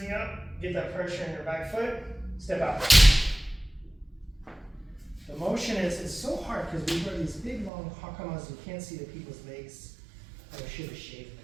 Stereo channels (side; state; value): left; drops out; at 7.7 s